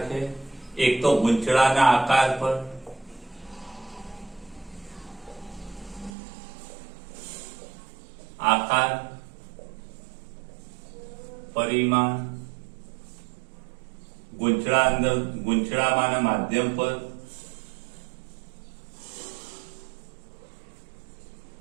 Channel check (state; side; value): drops out; left; at 6.2 s